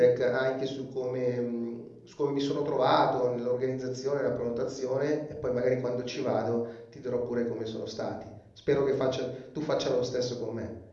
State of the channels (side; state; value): both; identical; correlation 1.00